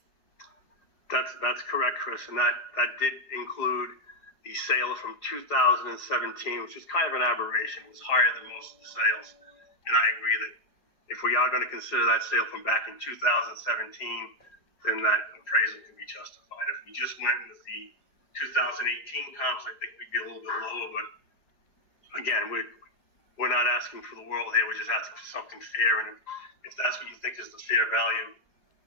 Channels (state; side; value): late; right; 4.9 ms